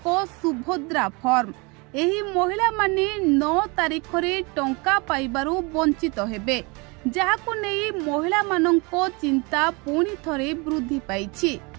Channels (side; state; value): left; quieter; 28.7 dB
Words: सुभद्रा फॉर्म। एही महिला माने 9 तारिख रे टंका पाइबारु वंचित हेबे, जाहाकु नहीं महिला मानंको चिंता पुणी थरे वृद्धि पाइछि।